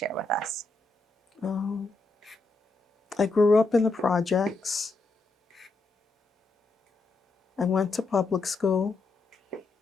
with us. I grew up in the projects. I went to public school.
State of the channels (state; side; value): quieter; right; 3.4 dB